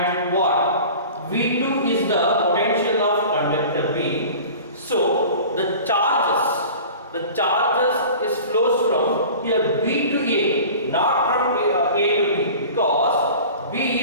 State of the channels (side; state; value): both; inverted; correlation -0.40